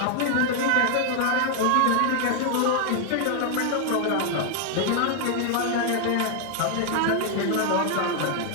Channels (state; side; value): different; both; correlation 0.00